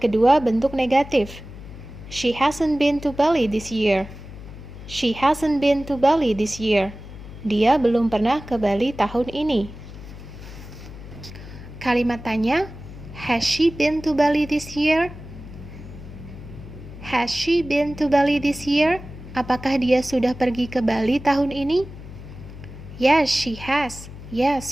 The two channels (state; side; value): noise; left; hum, 14 dB below the sound